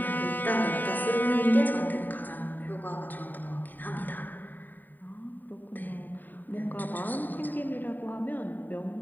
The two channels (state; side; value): late; right; 0.089 ms